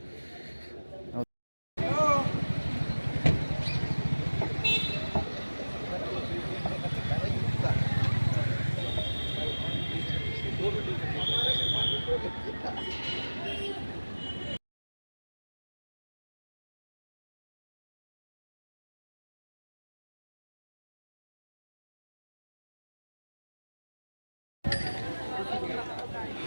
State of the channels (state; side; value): inverted; both; correlation -1.00